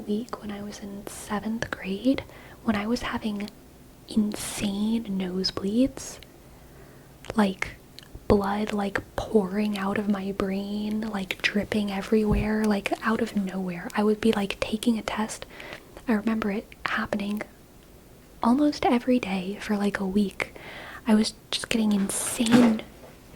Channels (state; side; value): identical; both; correlation 1.00